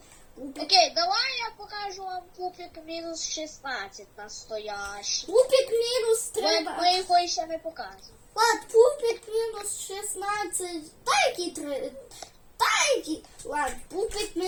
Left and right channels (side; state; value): both; identical; correlation 1.00